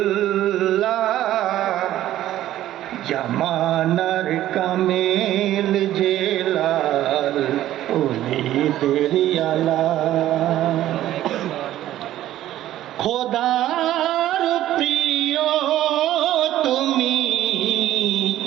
জামানার কামেল জেলাল ওলিদের আলা খোদার প্রিয় তুমি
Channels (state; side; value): quieter; left; 13.3 dB